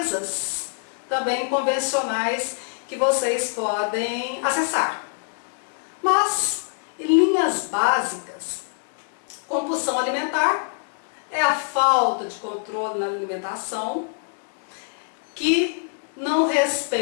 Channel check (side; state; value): right; silent; digital silence